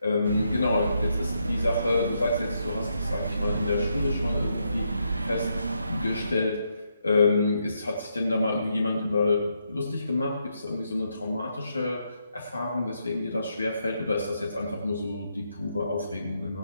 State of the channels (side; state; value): both; inverted; correlation -0.79